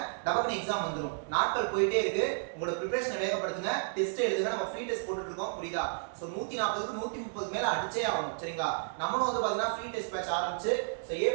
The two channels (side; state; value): left; silent; 56 dB below the other